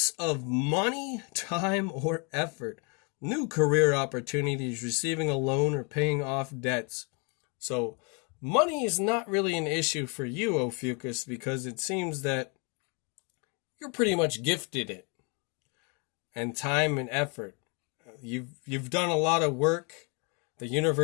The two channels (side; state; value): right; quieter; 34.4 dB